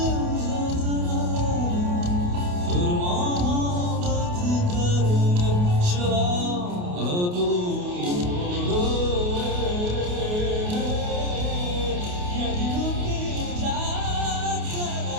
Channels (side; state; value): left; late; 28 ms